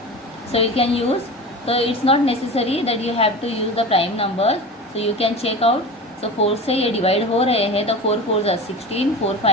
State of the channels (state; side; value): normal; both; correlation 0.31